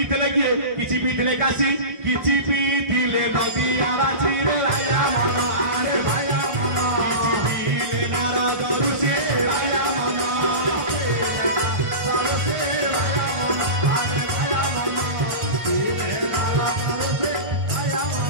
किए किछि पीथिले काशी किछि पीथिले नदी आराची रे आया मन आरे भाया मन किछि पीले नारद ऋषि आया मन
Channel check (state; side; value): late; left; 1.5 ms